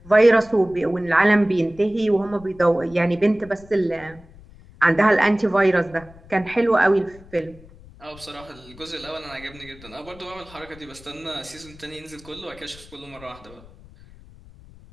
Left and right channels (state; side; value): noise; left; rumble, 22 dB below the sound